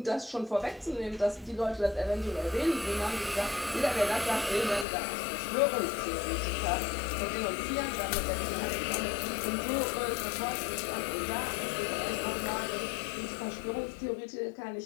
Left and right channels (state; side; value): drops out; right; at 4.9 s